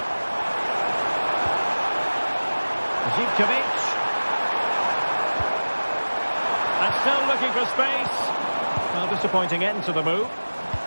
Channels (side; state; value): both; inverted; correlation -1.00